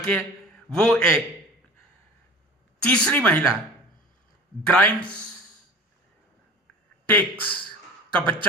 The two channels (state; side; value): normal; both; correlation 0.39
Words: वो एक तीसरी महिला ग्राइम्स टेक्स का